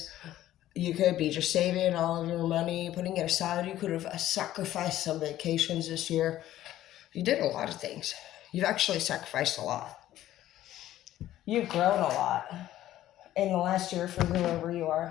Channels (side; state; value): right; quieter; 13.5 dB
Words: You could be just saving all of your money, putting it aside. You could have sacrificed some vacations this year. You did a lot of things. You've actually sacrificed a lot. You've grown a lot in the last year for whoever you